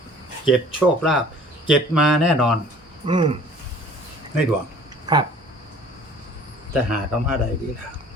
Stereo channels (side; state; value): both; normal; correlation 0.50